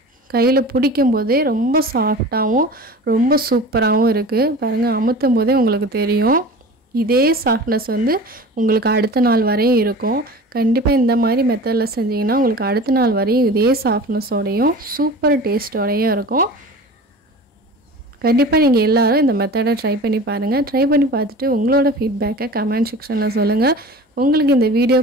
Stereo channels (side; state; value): both; normal; correlation 0.37